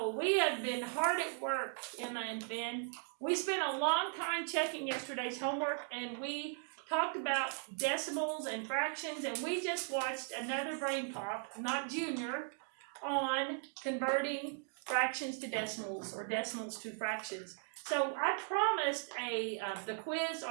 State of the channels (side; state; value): left; silent; 52 dB below the other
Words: we have been hard at work, Emma and Finn. We spent a long time checking yesterday's homework, and we talked about decimals and fractions, and we just watched another brain pop, not Junior, on converting fractions to decimals or decimals to fractions. So I promised the quiz